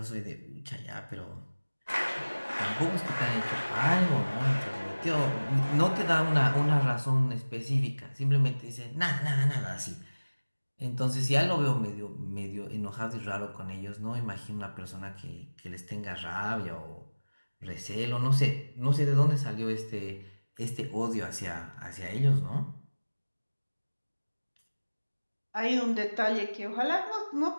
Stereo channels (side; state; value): both; inverted; correlation -1.00